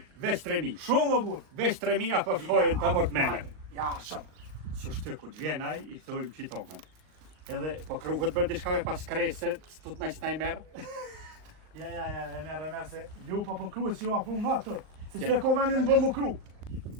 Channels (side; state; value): left; late; 38 ms